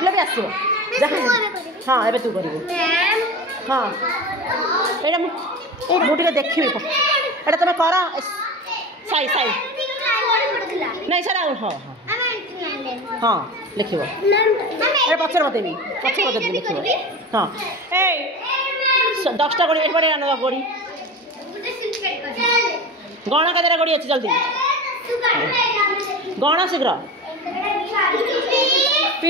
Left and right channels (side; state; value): both; normal; correlation 0.30